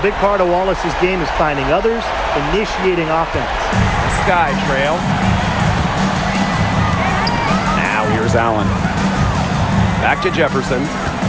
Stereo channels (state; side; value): identical; both; correlation 1.00